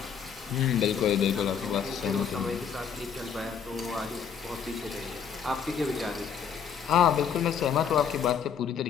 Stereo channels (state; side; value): quieter; right; 7.4 dB